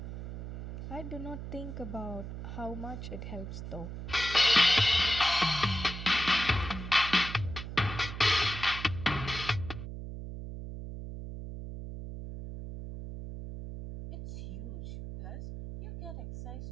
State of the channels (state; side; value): noise; right; hum, 8 dB below the sound